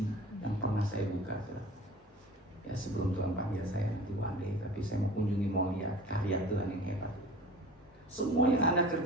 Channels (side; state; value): both; normal; correlation 0.41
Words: yang pernah saya buka. Ya sebelum Tuhan panggil saya nanti one day, tapi saya mau kunjungi, mau lihat karya Tuhan yang hebat. Semua yang Anda